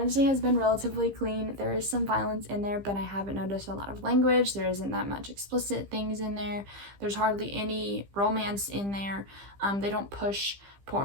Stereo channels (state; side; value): late; left; 15 ms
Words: has been relatively clean. There is some violence in there, but I haven't noticed a lot of language. There isn't that much explicit things in there. There's hardly any romance in there. They don't push